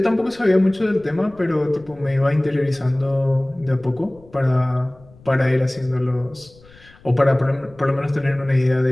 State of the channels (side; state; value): left; noise; rumble, 25 dB below the sound